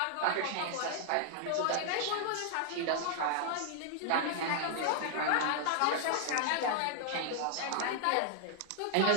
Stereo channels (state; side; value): different; both; correlation -0.01